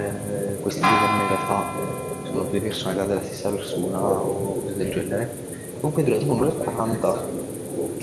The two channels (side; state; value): both; identical; correlation 1.00